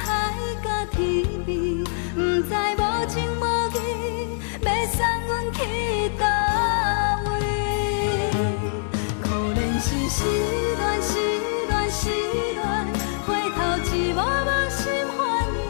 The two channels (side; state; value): right; silent; digital silence